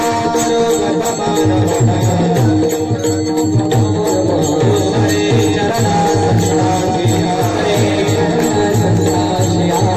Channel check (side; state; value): both; identical; correlation 1.00